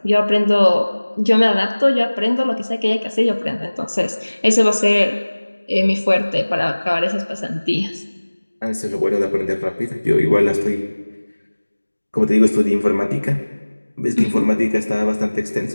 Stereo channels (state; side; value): inverted; both; correlation -1.00